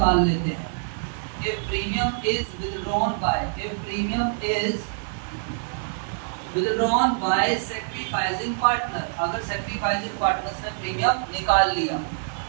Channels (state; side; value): silent; left; 62 dB below the other